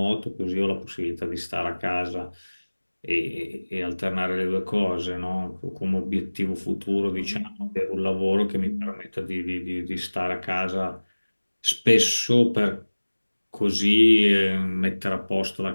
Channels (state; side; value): inverted; both; correlation -1.00